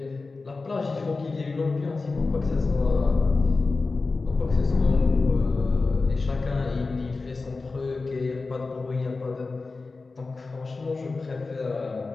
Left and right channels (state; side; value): quieter; right; 3.8 dB